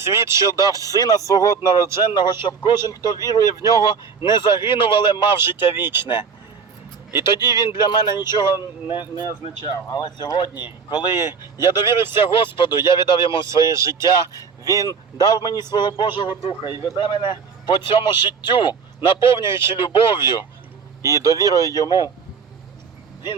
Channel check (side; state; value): left; quieter; 5.7 dB